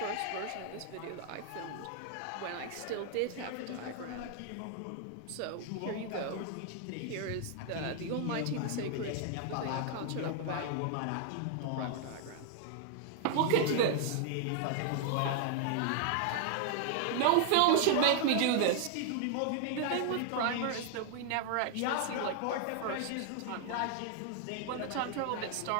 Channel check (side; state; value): both; different; correlation 0.00